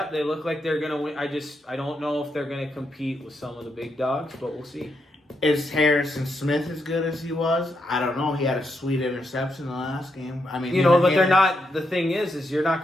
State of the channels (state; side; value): normal; both; correlation 0.81